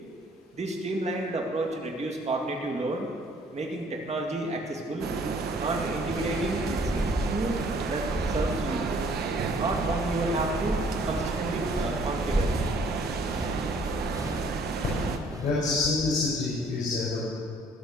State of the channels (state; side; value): normal; both; correlation 0.59